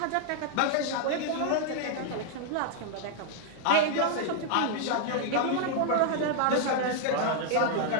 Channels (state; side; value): different; both; correlation 0.00